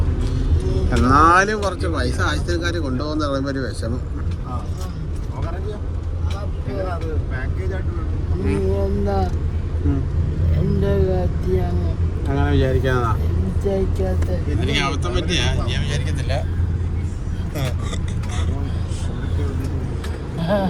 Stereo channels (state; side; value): identical; both; correlation 1.00